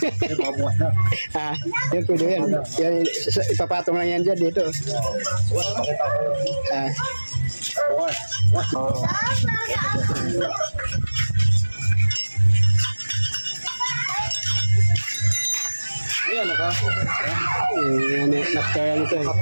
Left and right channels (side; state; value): both; inverted; correlation -1.00